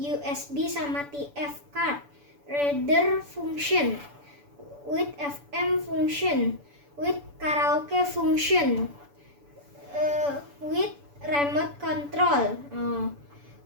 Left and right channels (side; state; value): left; late; 7.0 ms